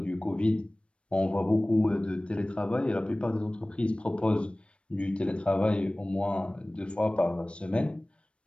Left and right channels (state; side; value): late; right; 0.059 ms